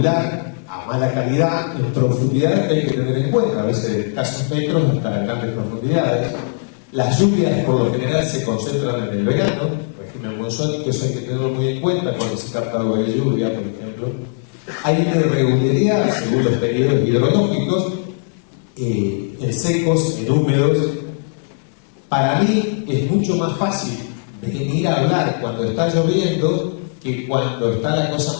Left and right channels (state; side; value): silent; right; digital silence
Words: a mala calidad, en profundidades que hay que tener en cuenta, a veces de escasos metros hasta grandes profundidades. Las lluvias por lo general se concentran en el verano, régimen monzónico, eso hay que tenerlo muy en cuenta cuando se capta agua de lluvia, por ejemplo. Hay una irregularidad según los periodos hidrológicos, en secos, en húmedos. Para mí es mucho más fácil venir a hablar cuando está lloviendo que cuando está la cosa